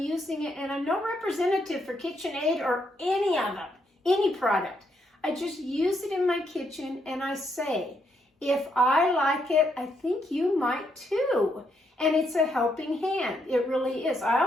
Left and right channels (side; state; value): both; normal; correlation 0.76